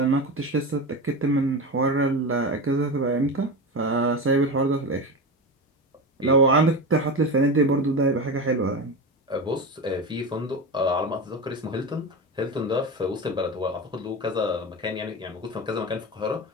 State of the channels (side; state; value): both; normal; correlation 0.23